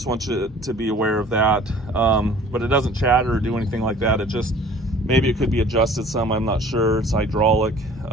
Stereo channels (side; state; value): both; normal; correlation 0.50